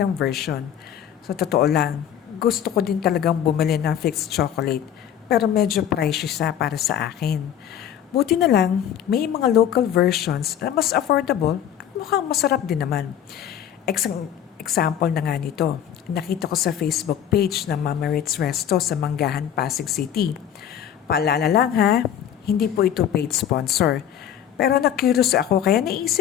version. Sa totoo lang, gusto ko din talagang bumili ng fixed chocolate pero medyo pricey siya para sa akin. Buti na lang, may mga local versions na mas affordable at mukhang masarap din naman. Example na nga nito, nakita ko sa Facebook page ng Mama Ritz Resto sa Manggahan, Pasig City. Paalala lang ha, hindi po ito paid sponsor. Pero na-curious ako kaya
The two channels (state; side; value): quieter; right; 9.7 dB